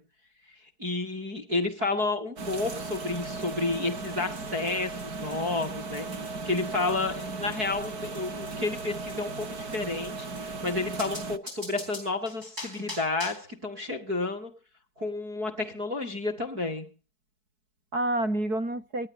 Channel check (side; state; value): left; late; 4.6 ms